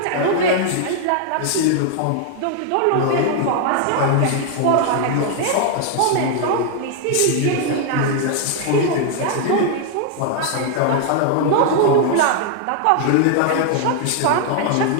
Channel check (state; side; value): different; both; correlation 0.00